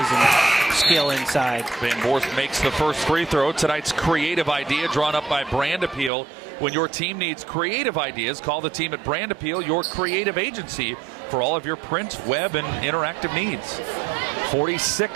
and skill inside. Van Voorst makes the first free throw. Tonight's creative idea drawn up by Brand Appeal. When your team needs creative ideas, call the team at Brand Appeal, your creative agency for all of your print, web, and interactive needs.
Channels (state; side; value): drops out; left; at 6.1 s